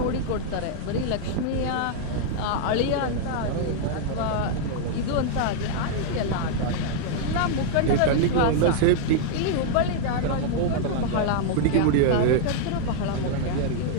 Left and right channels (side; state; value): both; different; correlation -0.01